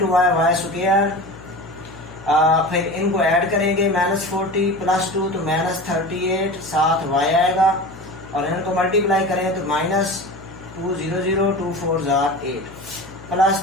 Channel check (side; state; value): left; noise; hum, 19 dB below the sound